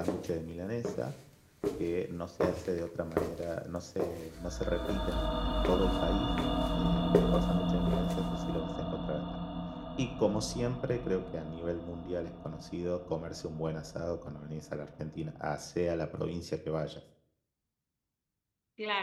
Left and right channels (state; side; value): identical; both; correlation 1.00